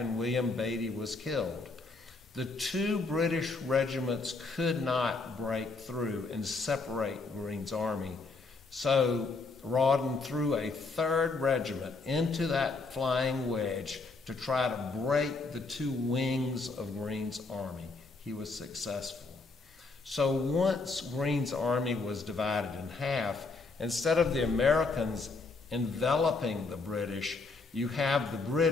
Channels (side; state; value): right; quieter; 3.9 dB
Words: William Beatty was killed. The 2 British regiments could not break through and separate Greene's army. So Rodden threw a 3rd regiment into that flying wedge to try to break the 2 wings of Greene's army. He was successful. So once Greene's army was divided in half, instead of the Americans enveloping the British, you have the